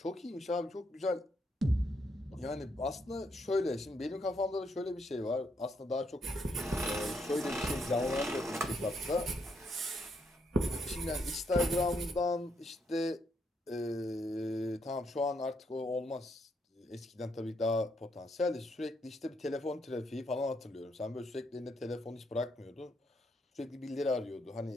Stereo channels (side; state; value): both; normal; correlation 0.76